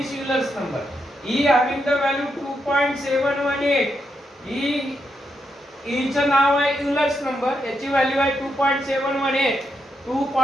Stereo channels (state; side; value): normal; both; correlation 0.82